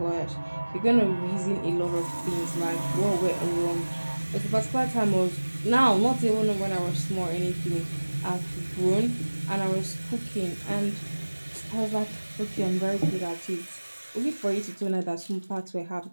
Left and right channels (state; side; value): inverted; both; correlation -1.00